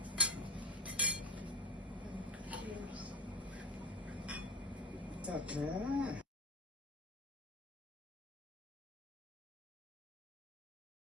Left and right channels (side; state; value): both; normal; correlation 0.32